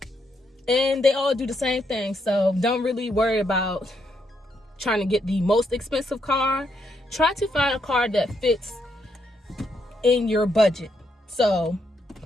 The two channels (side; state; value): both; normal; correlation 0.78